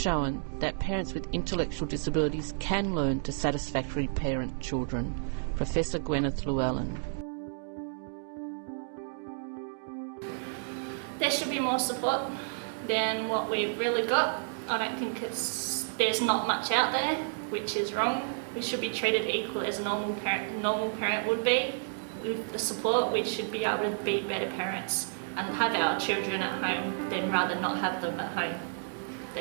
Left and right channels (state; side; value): silent; left; digital silence